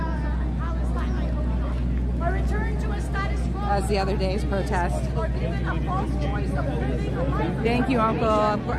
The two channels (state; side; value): identical; both; correlation 1.00